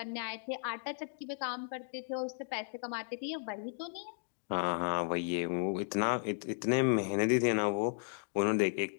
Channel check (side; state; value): right; silent; digital silence